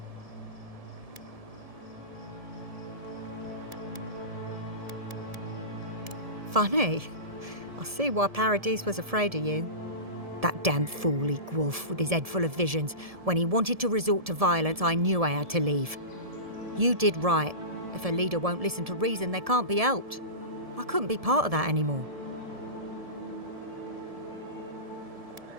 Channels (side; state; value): left; late; 1.7 ms